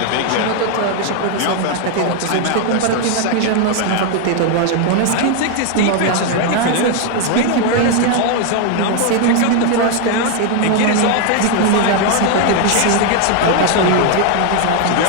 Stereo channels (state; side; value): different; both; correlation 0.01